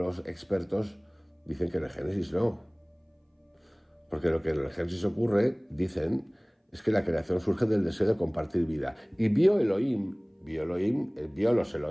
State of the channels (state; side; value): identical; both; correlation 1.00